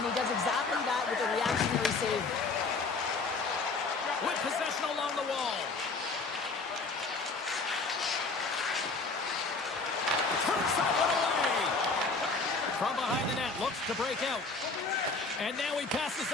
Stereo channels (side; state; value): right; quieter; 4.0 dB